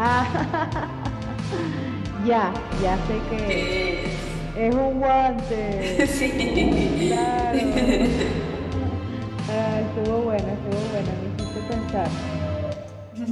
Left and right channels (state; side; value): identical; both; correlation 1.00